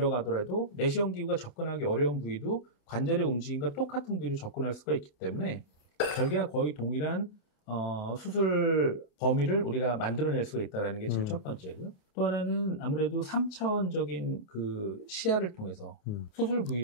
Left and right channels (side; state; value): right; late; 28 ms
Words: 내시경 기구가 접근하기 어려운 부위도 관절의 움직임과 똑같은 부위로 접근할 수가 있기 때문에 절개와 거의 동일한 수술 범위를 우리가 만들어낼 수가 있다는 게 제일 첫 번째고요. 또 하나는 아무래도 3차원적인 그 시야를 통해서 수술